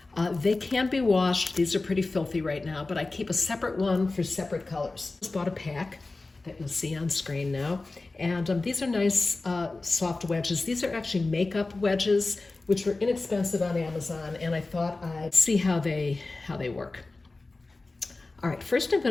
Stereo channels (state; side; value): quieter; right; 3.4 dB